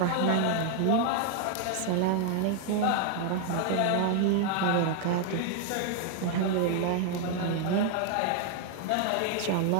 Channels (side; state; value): both; different; correlation 0.00